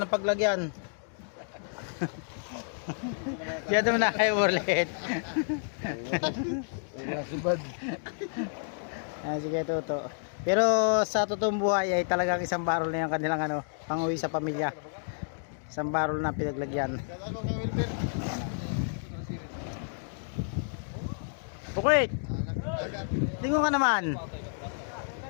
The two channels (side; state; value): right; silent; digital silence